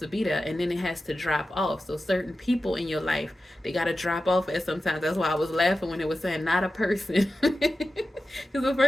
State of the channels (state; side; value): normal; both; correlation 0.93